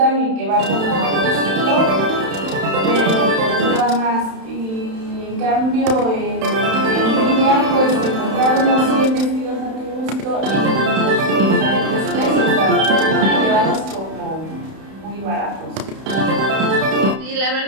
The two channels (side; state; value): left; late; 31 ms